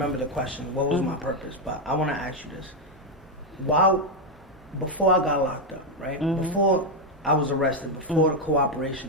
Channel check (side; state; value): both; normal; correlation 0.04